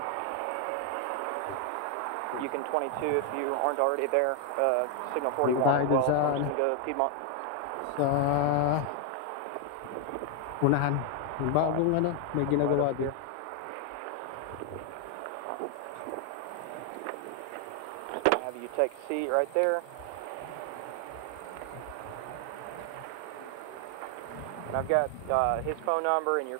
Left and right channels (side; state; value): both; different; correlation 0.00